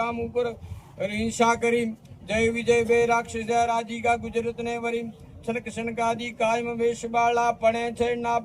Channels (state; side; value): identical; both; correlation 1.00